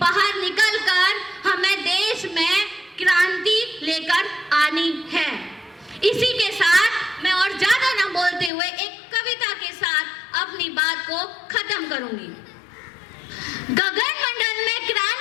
निकलकर हमें देश में क्रांति लेकर आनी है। इसी के साथ मैं और ज्यादा न बोलते हुए एक कविता के साथ अपनी बात को खत्म करूंगी। गगन मंडल में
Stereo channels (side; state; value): right; drops out; at 8.5 s